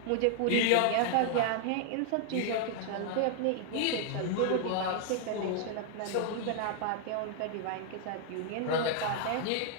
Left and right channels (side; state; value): both; different; correlation 0.00